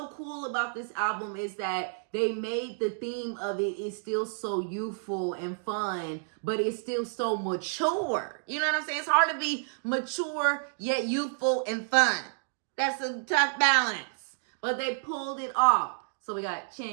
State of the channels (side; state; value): left; silent; digital silence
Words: cool about this album is that they made the theme of it is still so youthful and fun, but it's still so mature. You know what I'm saying? It's hard to be mature yet youthful and fun. That's a tough balance, but they pulled it off. So we got